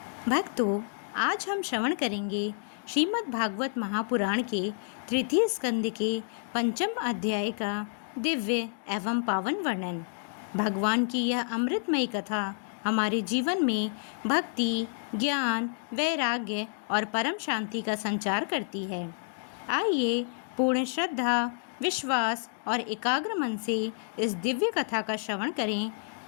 भक्तों, आज हम श्रवण करेंगे श्रीमद् भागवत महापुराण के तृतीय स्कंद के पंचम अध्याय का दिव्य एवं पावन वर्णन। भगवान की यह अमृतमयी कथा हमारे जीवन में भक्ति, ज्ञान, वैराग्य और परम शांति का संचार करती है। आइए पूर्ण श्रद्धा, विश्वास और एकाग्र मन से इस दिव्य कथा का श्रवण करें।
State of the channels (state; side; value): silent; right; digital silence